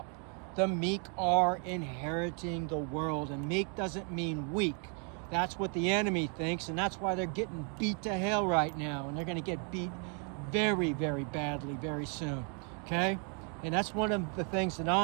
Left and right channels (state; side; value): quieter; left; 39.1 dB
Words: The meek are inheriting the world. And meek doesn't mean weak. That's what the enemy thinks, and that's why they're getting beat to hell right now. And they're going to get beat very, very badly very soon, okay? And that's one of the things that